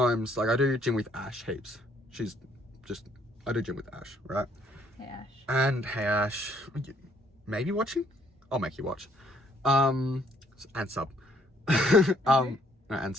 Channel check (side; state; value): both; normal; correlation 0.66